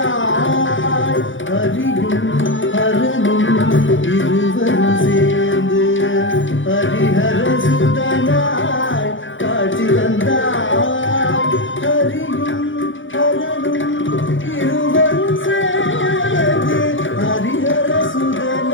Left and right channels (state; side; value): late; right; 0.56 ms